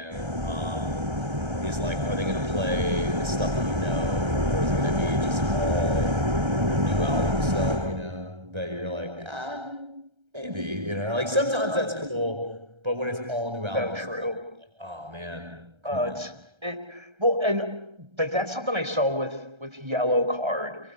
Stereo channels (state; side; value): late; left; 1.3 ms